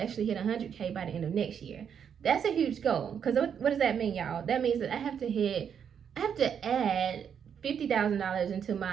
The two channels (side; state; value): left; quieter; 7.8 dB